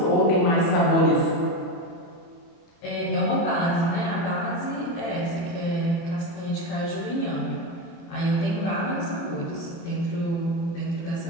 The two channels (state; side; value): late; right; 29 ms